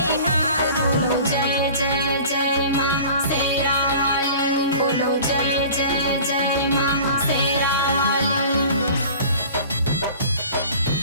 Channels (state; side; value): inverted; both; correlation -0.43